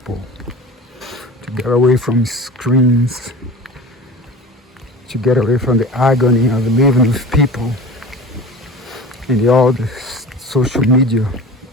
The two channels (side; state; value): both; normal; correlation 0.35